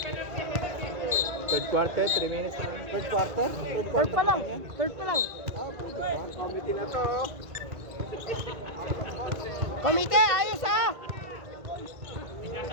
Third quarter, 3 minutes. Third quarter? Third Third quarter pa lang. yan? Third pa lang. Ah, pwede ba? Committee na to. Komite, ayos ah!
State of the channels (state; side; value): late; left; 1.6 ms